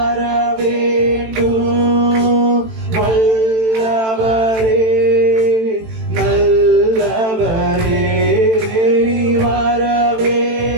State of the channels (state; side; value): late; left; 18 ms